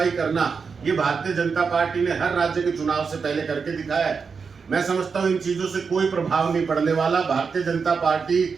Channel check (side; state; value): left; quieter; 5.5 dB